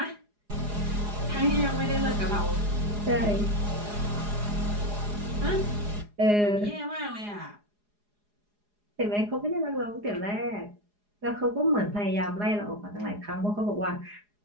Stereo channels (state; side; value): late; left; 4.8 ms